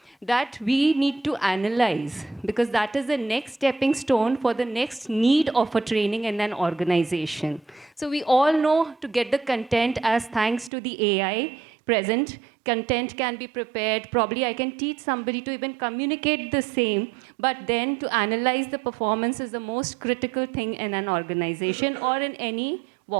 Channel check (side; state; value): left; drops out; at 10.7 s